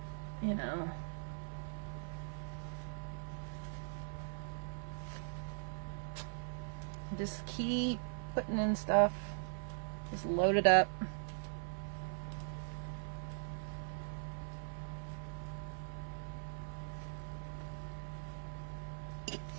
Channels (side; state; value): left; silent; 51 dB below the other